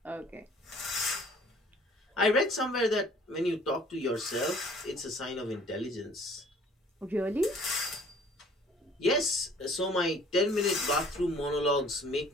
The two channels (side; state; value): both; normal; correlation 0.54